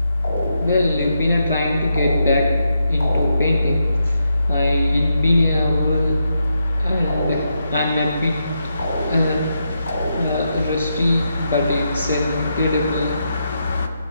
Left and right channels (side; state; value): both; inverted; correlation -0.83